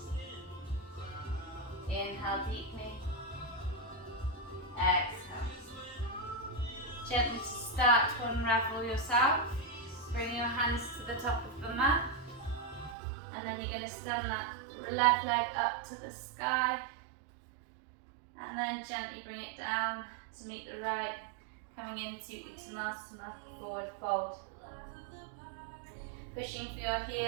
Inhale deeply. Exhale. Gently start to unravel yourself. Bring your hands to the top of the mat. And then you're going to stand that left leg up to the sky. And then gently bring it down to meet the right, coming into Uttanasana, forward fold. Pushing for your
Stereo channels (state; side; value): drops out; left; at 13.0 s